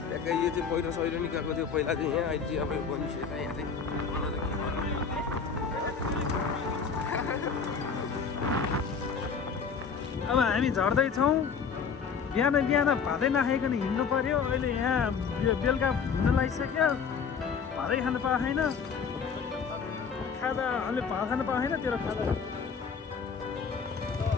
ट्याक्कै यो चाहिँ पहिरो सहिरो निकालेको थियो पहिला चाहिँ यहाँ अहिले चाहिँ अब यो बनिसकेको छ यहाँ चाहिँ अब हामी झर्दैछौँ बिहान बिहान भातै नखाइकन हिँड्नु पर्यो। अहिले यहाँ बेलुका हुन लागिसक्यो, भातै खानु पाएन, खाजा अहिले भात खानु पाएन, तेरो खाजा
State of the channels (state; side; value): quieter; right; 6.0 dB